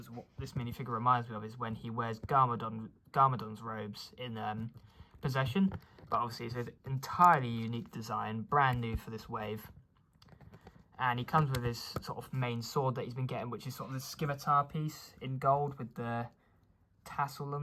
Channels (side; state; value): both; identical; correlation 1.00